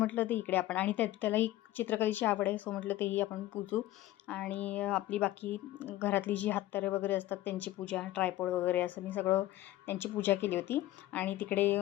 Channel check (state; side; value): quieter; right; 15.2 dB